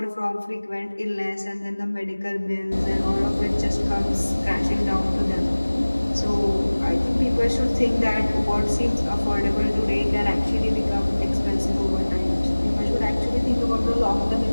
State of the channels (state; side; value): inverted; both; correlation -1.00